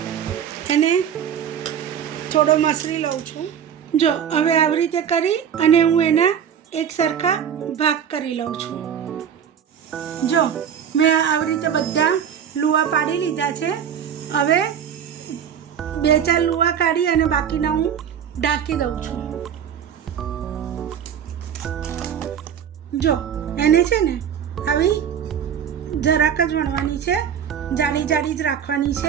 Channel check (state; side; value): quieter; left; 8.5 dB